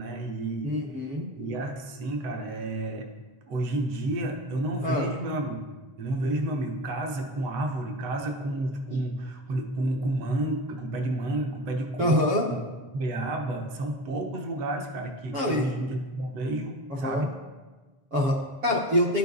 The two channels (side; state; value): left; late; 7.3 ms